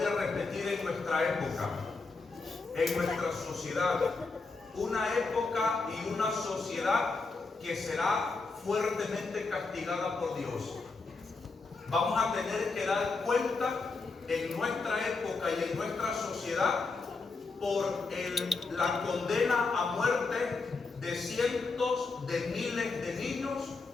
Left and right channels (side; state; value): right; quieter; 4.0 dB